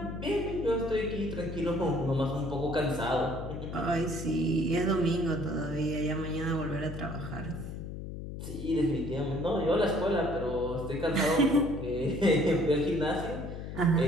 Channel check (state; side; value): noise; left; hum, 8 dB below the sound